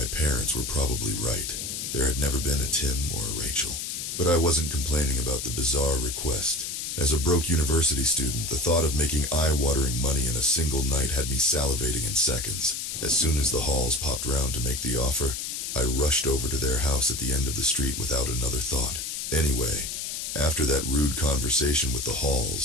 parents were probably right. There had never been a Tim or a Rachel. But I wasn't complaining about the bizarre request. As a broke university student, the thought of making eye-watering money in a single night had me salivating in seconds. As soon as the Halls popped round to make the offer, I rushed over to their house at the end of the street without another thought. Anyway, after that rude conversation with the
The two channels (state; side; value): noise; left; hiss, 5 dB below the sound